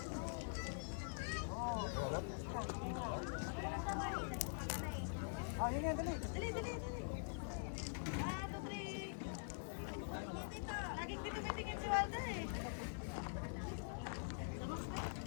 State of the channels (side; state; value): right; silent; digital silence